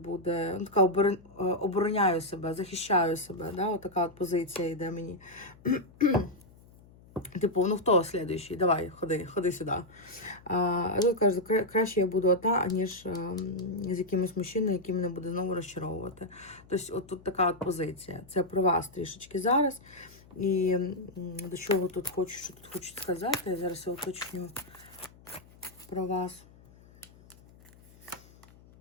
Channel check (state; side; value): noise; left; hum, 24 dB below the sound